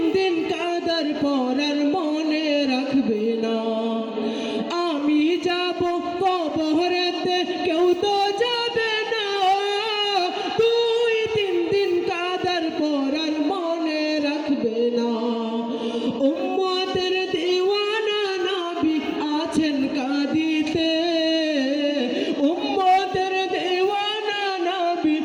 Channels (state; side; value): identical; both; correlation 1.00